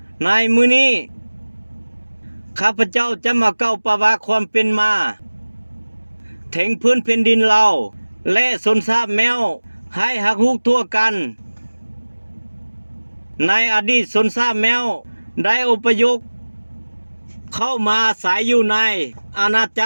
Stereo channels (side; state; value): both; inverted; correlation -1.00